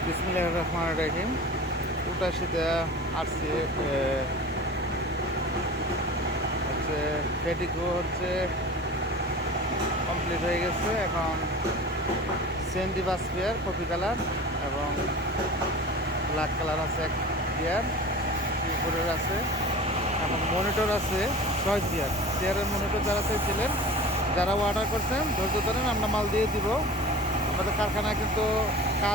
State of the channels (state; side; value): normal; both; correlation 0.37